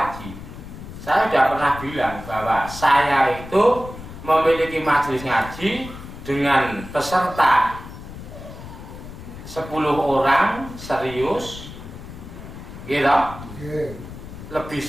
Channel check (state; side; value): noise; left; rumble, 13 dB below the sound